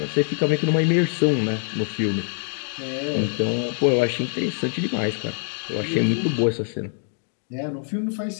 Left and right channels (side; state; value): right; silent; digital silence